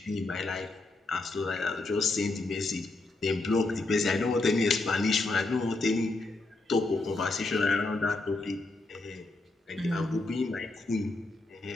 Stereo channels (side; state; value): right; quieter; 3.1 dB